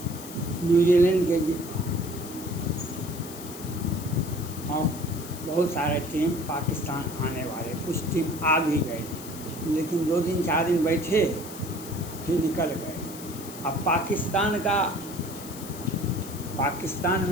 न्यूजीलैंड के और बहुत सारे टीम पाकिस्तान आने वाले, कुछ टीम आ भी गए, लेकिन 2 दिन 4 दिन बैठे फिर निकल गए। अब पाकिस्तान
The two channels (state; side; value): noise; left; hiss, 14 dB below the sound